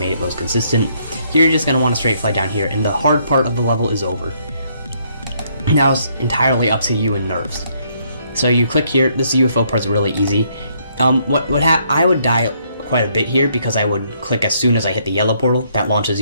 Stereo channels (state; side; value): inverted; both; correlation -0.70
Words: it most consistent. Here you're just going to want to straight fly down here, and the hard part of the level is over. Now it's entirely up to you and nerves. So you click here. This UFO part's really easy. I would die quite a bit here because I would click as soon as I hit the yellow portal. That launches